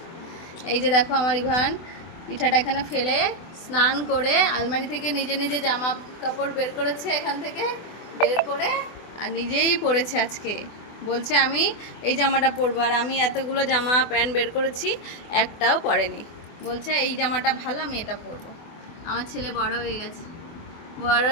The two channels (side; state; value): right; late; 24 ms